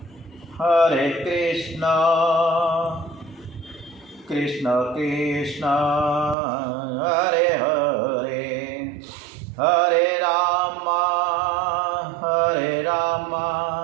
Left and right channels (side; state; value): left; drops out; at 6.4 s